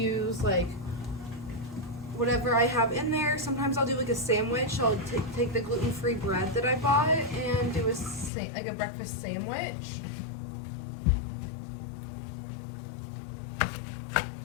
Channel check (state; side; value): drops out; right; at 8.3 s